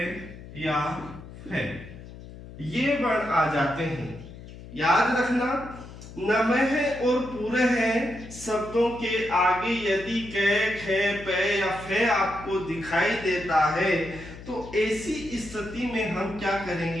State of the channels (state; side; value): noise; left; hum, 15 dB below the sound